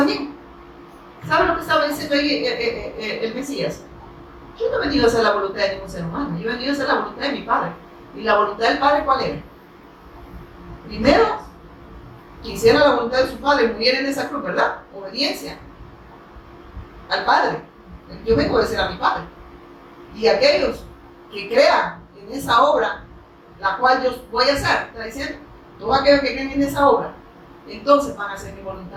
¿Saben lo que estaba diciendo ahí el Mesías? Yo no he venido a hacer la voluntad de ningún ser humano. Yo he venido a hacer la voluntad de mi Padre. ¿Y la voluntad del Padre cuál era? Primero, que hiciera la voluntad de su Padre, muriera en esa cruz, ¿verdad? Obediencia al Padre. Yo vengo a obedecer a mi Padre. Y aquellos que crean en esa obra, la cual yo voy a hacer, está diciendo, todos aquellos que creen en esa obra, entonces van a hacer mi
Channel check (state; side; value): identical; both; correlation 1.00